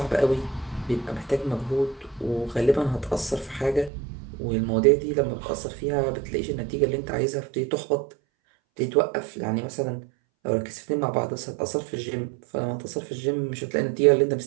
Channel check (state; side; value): drops out; left; at 3.9 s